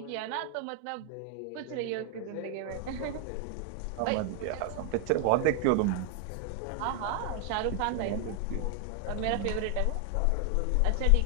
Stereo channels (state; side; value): different; both; correlation 0.00